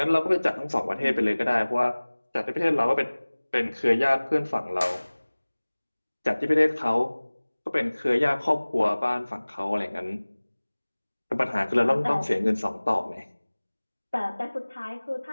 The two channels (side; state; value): both; inverted; correlation -1.00